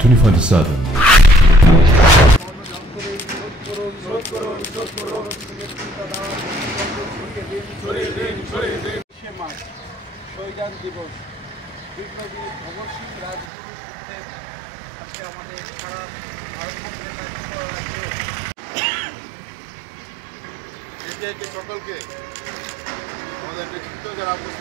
24/7. শহীদান দিবস বিপ্লবী ভগৎ সিং রাজগুরু সুখদেব আজকে আমাদের সারা ভারতবর্ষের সকলকে আমাদের নেতৃত্ব যারা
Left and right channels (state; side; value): drops out; left; at 13.5 s